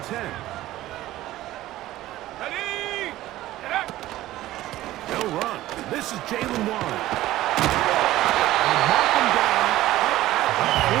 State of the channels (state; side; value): quieter; left; 15.4 dB